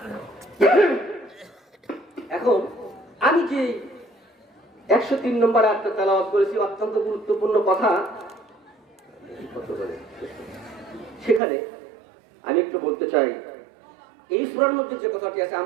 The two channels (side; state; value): left; drops out; at 11.4 s